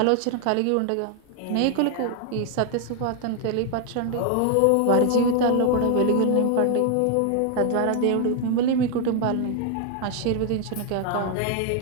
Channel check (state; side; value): different; both; correlation 0.00